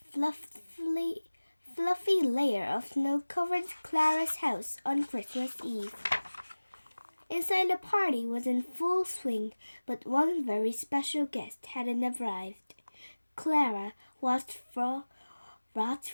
fluffy layer of snow covered Clara's house on Christmas Eve. Inside, the party was in full swing, but one very special guest hadn't arrived. Clara watched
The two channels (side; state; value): both; inverted; correlation -1.00